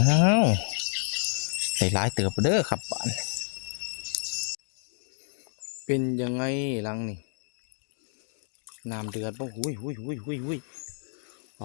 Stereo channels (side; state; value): right; silent; digital silence